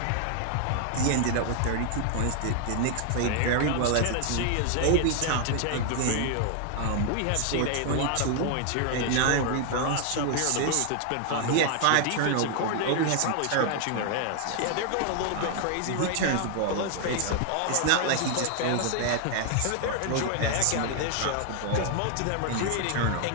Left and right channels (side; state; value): both; different; correlation 0.00